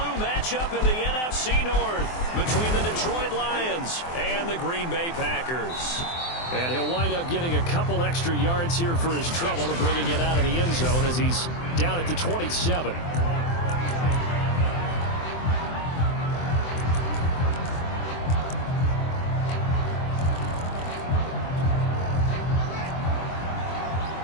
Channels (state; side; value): late; right; 24 ms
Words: matchup in the NFC North between the Detroit Lions and the Green Bay Packers. And he'll wind up getting a couple extra yards here for his trouble to bringing it out of the end zone as he's down at the 27.